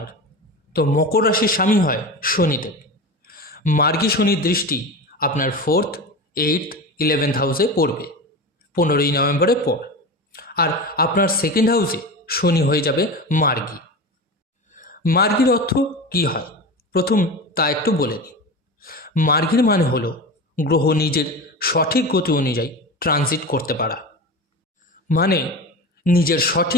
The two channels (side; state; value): both; normal; correlation 0.27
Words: তো মকর রাশির স্বামী হয় শনিদেব। মার্গী শনির দৃষ্টি আপনার 4th, 8th, 11th হাউসে পড়বে 15ই নভেম্বরের পর। আর আপনার 2nd হাউসে শনি হয়ে যাবে মার্গী। মার্গীর অর্থ কী হয় প্রথম তা একটু বলে নিই। মার্গীর মানে হলো গ্রহ নিজের সঠিক গতি অনুযায়ী ট্রানজিট করতে পারা, মানে নিজের